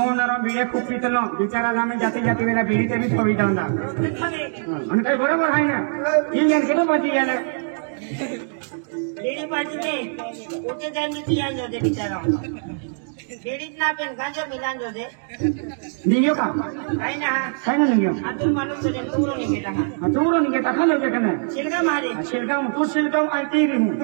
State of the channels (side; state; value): left; silent; digital silence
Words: వీడే కుప్పితలం బిచారాలు ఆమె జాతి జాతి వేళ వీడితే బి సవితా ఉందా અને કઈ બરાબર થાય ને ઈ જન કેટલો બચી ગયા લેડી પાર્ટી ને ઓકે જાની પિયાન જો દે બિચારા લેડી ના પેન ગાંજો મિલાન જો દે નીગ્યો કા કાઈ ના કઈ ન નીગ્યો આતુર માનુસ છે તુરો ની બેટા આ તુરો નીગે તા ખાલો બેકને સિલગા મારી શિલગામ તું શિલગામ આઈ તીરી હું